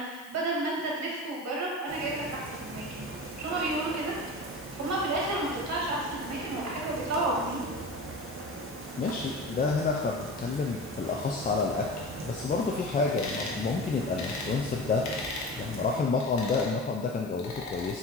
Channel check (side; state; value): left; noise; hiss, 22 dB below the sound